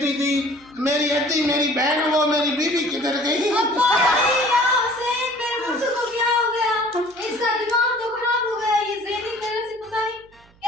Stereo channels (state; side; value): noise; right; hum, 29 dB below the sound